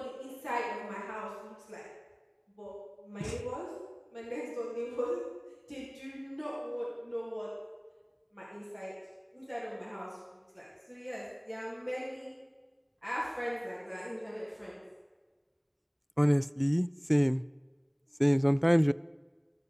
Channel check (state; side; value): identical; both; correlation 1.00